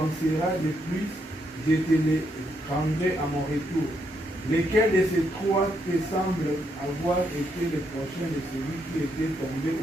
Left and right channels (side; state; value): both; normal; correlation 0.77